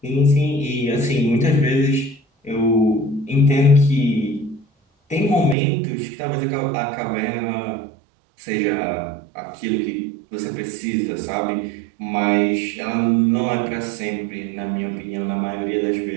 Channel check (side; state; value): left; drops out; at 5.6 s